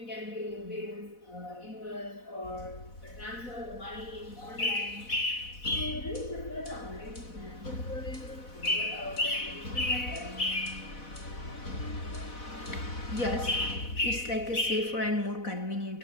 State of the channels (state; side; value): late; right; 4.1 ms